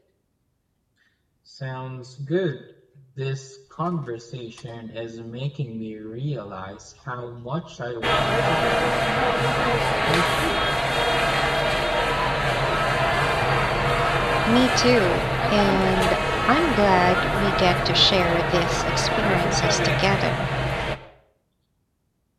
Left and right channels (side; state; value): both; identical; correlation 1.00